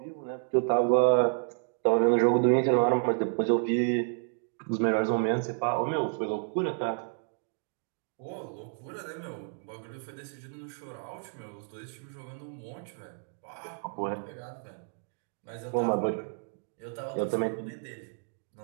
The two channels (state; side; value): silent; left; 57 dB below the other